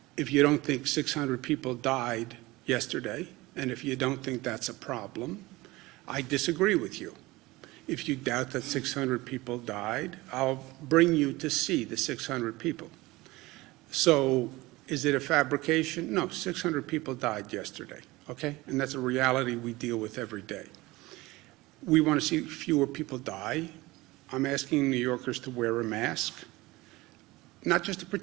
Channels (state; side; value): quieter; left; 20.5 dB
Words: if you don't think 600 people died yesterday, and if you don't think that's a problem, I disagree with you. If you doubt that 600 people died, I'll bring you to see the 600 people. So is it a fabrication? No, 600 people died yesterday, okay? And that's a reality we deal with every day. We want to see fewer people die. I'm asking New Yorkers to wear a mask, not just to